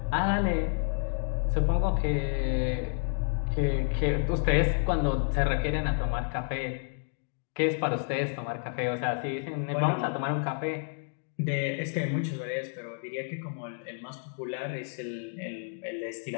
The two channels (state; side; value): silent; right; 57 dB below the other